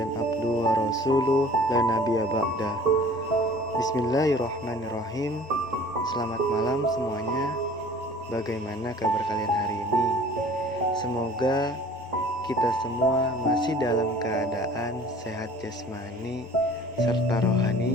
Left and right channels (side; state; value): both; normal; correlation 0.48